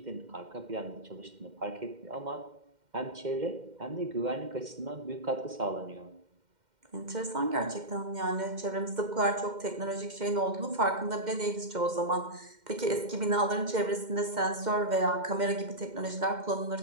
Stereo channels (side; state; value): left; late; 2.1 ms